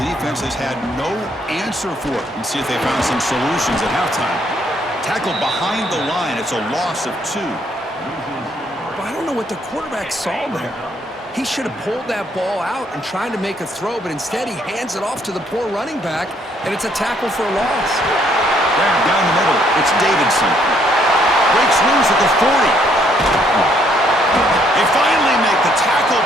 defense has had no answer for it. And see if they found some solutions at halftime. Tackled behind the line. It's a loss of 2. But I don't know what the quarterback saw there. He should have pulled that ball out and tried to make a throw, but instead he hands it off to the poor running back, and it's a tackle for a loss. Down the middle, it's Davidson. Breaks loose at the 40. They finally make the tackle,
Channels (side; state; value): both; normal; correlation 0.68